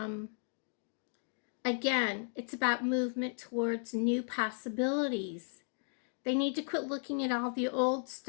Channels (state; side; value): silent; right; 54 dB below the other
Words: again, it's about movement towards new possibilities. They need to quit looking at all the old